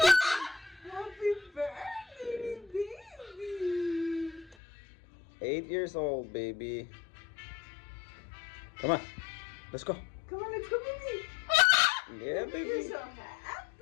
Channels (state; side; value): drops out; right; at 4.5 s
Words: Happy birthday, baby. 8 years old, baby. Come on. Let's go. Come on, let's go, baby. Yeah, You're baby. so